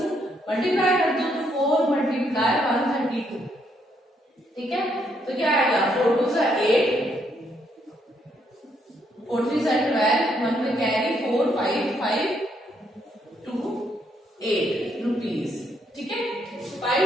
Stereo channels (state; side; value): normal; both; correlation 0.73